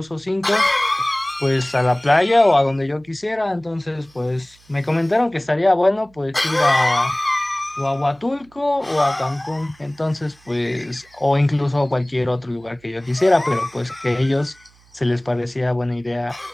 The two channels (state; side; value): noise; right; hum, 30 dB below the sound